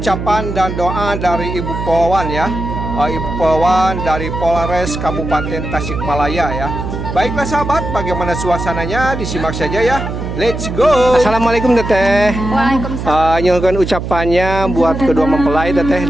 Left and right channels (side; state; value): right; noise; hum, 6 dB below the sound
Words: dan doa dari Ibu Polwan ya. Ibu Polwan dari Polres Kabupaten Tasikmalaya ya. Baiklah sahabat, bagaimana suasananya disimak saja ya. Let's go. Assalamualaikum teteh. Waalaikumsalam. Nyuhun ucapannya buat kedua mempelai teteh